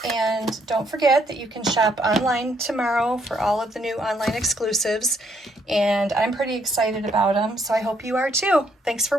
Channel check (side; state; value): both; normal; correlation 0.71